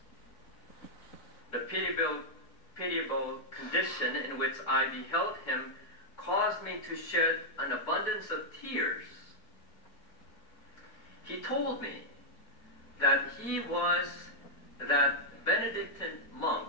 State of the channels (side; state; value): right; late; 4.4 ms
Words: The pitiable condition in which I beheld him caused me to shed an abundance of tears. He told me that he was that Benedictine